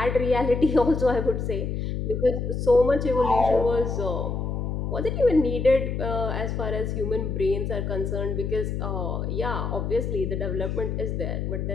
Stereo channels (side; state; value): left; noise; hum, 2 dB below the sound